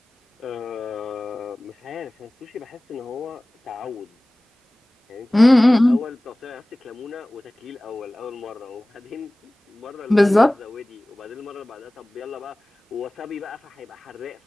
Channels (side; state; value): both; normal; correlation 0.98